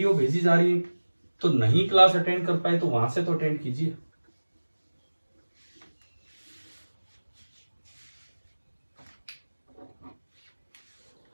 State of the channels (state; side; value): inverted; both; correlation -1.00